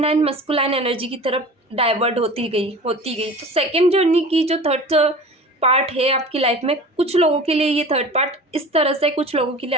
मस्कुलाइन एनर्जी की तरफ डाइवर्ट होती गई। तो सेकेंड जर्नी की जो थर्ड पार्ट है आपकी लाइफ में, कुछ लोगों के लिए ये थर्ड पार्ट इस तरह से, कुछ लोगों के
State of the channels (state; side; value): normal; both; correlation 0.38